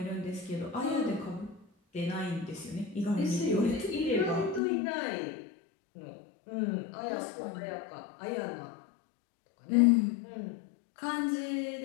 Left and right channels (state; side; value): drops out; right; at 4.6 s